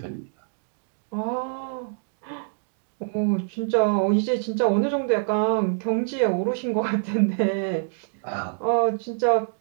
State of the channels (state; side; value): silent; left; digital silence